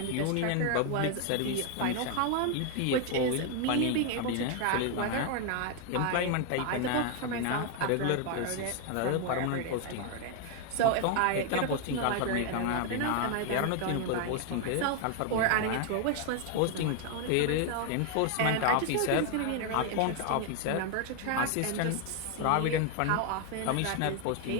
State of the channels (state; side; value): different; both; correlation 0.00